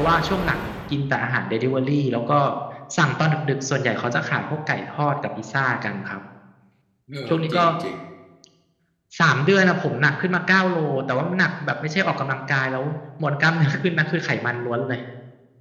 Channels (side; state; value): both; identical; correlation 1.00